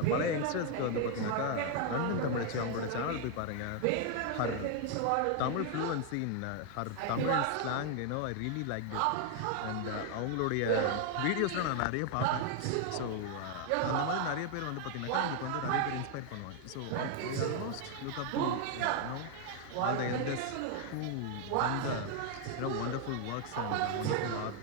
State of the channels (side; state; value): both; different; correlation 0.00